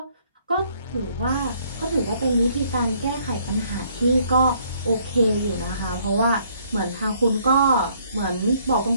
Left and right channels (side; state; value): both; inverted; correlation -0.65